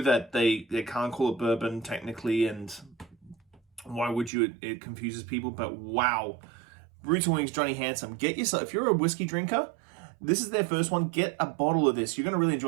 that they can't call it bourbon technically, and why would you? It confuses people, but wow. Roots and Wings, Johnny Handsome. Get yourself, if you're a whiskey drinker, this is their first one. Get a bottle of this. You're going to really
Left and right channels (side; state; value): left; drops out; at 4.3 s